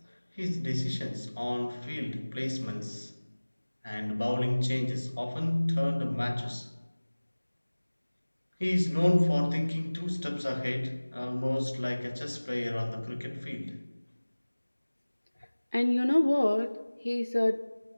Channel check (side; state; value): both; inverted; correlation -1.00